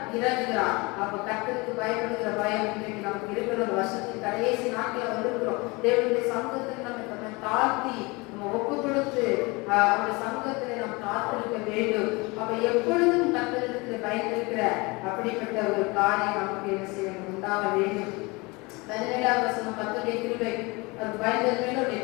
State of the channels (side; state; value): right; quieter; 25.7 dB